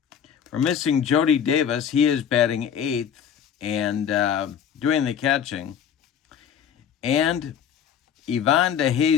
We're missing Jody Davis, he is batting eighth and doing the catching. And Ivan De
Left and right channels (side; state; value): right; quieter; 8.3 dB